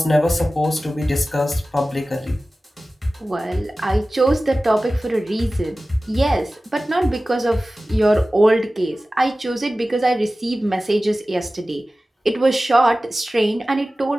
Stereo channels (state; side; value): normal; both; correlation 0.96